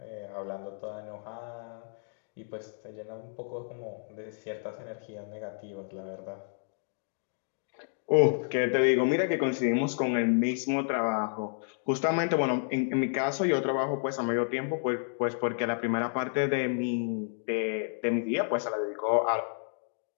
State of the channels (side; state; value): right; silent; digital silence